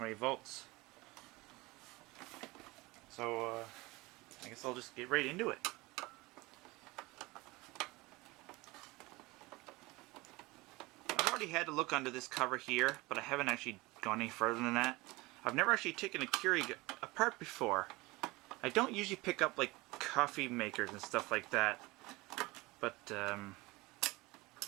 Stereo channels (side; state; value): left; quieter; 22.4 dB